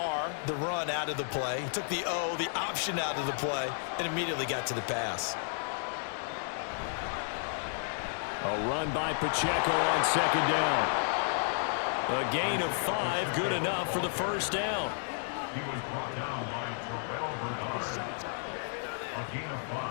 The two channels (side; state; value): right; silent; 56 dB below the other